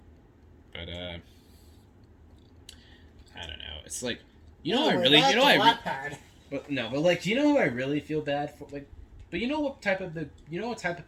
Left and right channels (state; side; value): identical; both; correlation 1.00